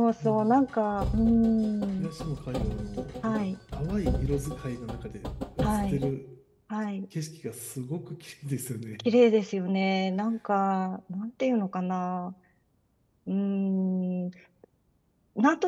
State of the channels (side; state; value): both; identical; correlation 1.00